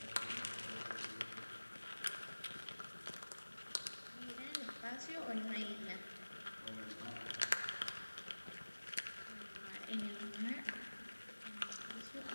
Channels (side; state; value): both; inverted; correlation -1.00